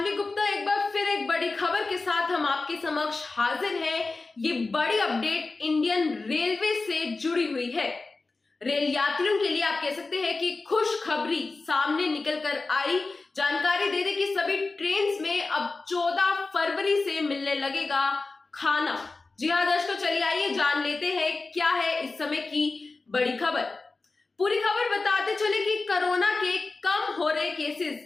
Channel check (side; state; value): right; quieter; 3.7 dB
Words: गुप्ता एक बार फिर एक बड़ी खबर के साथ हम आपके समक्ष हाजिर हैं। ये बड़ी अपडेट इंडियन रेलवे से जुड़ी हुई है। रेल यात्रियों के लिए आप कह सकते हैं कि खुशखबरी सामने निकल कर आई। जानकारी दे दें कि सभी ट्रेन में अब 14 फरवरी से मिलने लगेगा खाना। जी हाँ दर्शकों, चलिए आइए जान लेते हैं क्या है इस समय की बड़ी खबर। पूरी खबर बताते चले कि कोरोना के कम हो रहे